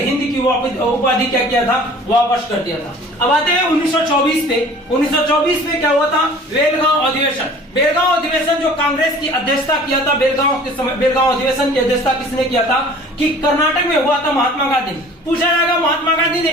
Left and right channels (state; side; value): normal; both; correlation 0.47